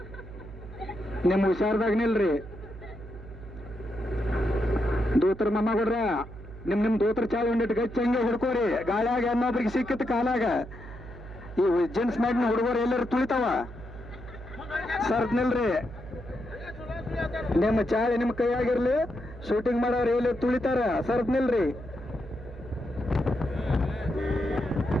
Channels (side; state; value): right; noise; hum, 14 dB below the sound